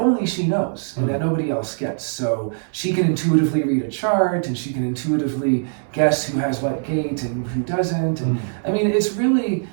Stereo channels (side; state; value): left; silent; 63 dB below the other